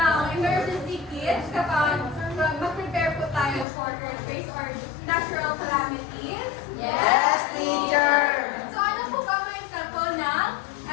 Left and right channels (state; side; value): drops out; right; at 3.7 s